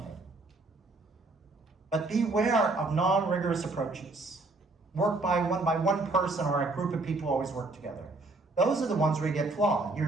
it. But beware of non-rigorous approaches. Work by one person or a group of people always work together. Those are the ones where you get flawed.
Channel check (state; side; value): quieter; left; 3.2 dB